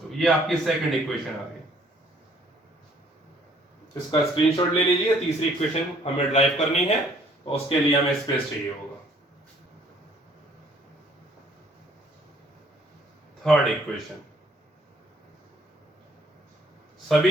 ये आपकी सेकंड इक्वेशन आ गई। इसका स्क्रीनशॉट ले लीजिए। तीसरी इक्वेशन हमें ड्राइव करनी है, तो उसके लिए हमें स्पेस चाहिए होगा। थर्ड इक्वेशन सभी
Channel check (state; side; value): normal; both; correlation 0.61